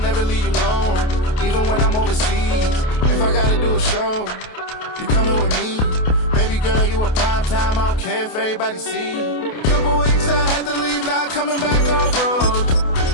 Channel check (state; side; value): late; right; 28 ms